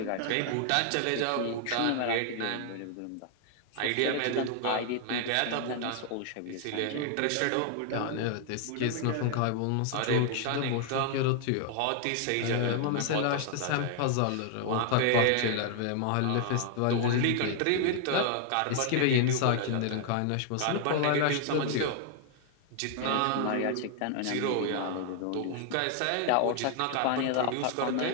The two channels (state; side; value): different; both; correlation 0.00